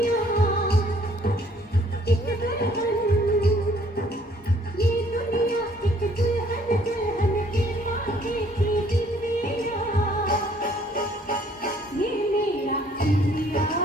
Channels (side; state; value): both; normal; correlation 0.61